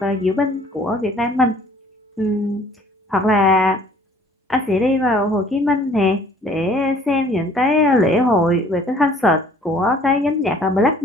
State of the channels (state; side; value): normal; both; correlation 0.55